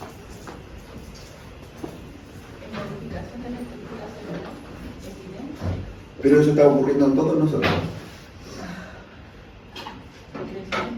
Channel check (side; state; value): both; identical; correlation 1.00